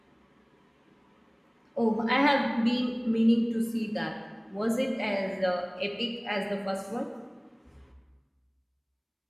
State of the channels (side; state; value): both; identical; correlation 1.00